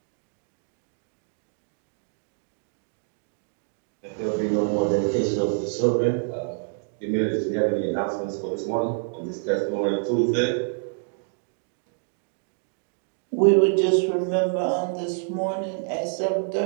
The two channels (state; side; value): silent; left; digital silence